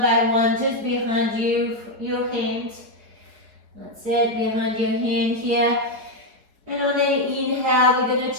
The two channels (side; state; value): left; late; 4.9 ms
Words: by one, just behind your hand. That's it, behind your hand here. And on the inhale, we're going